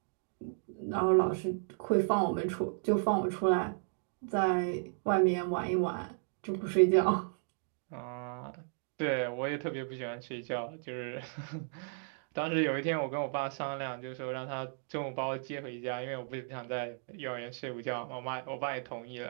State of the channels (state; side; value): silent; left; 55 dB below the other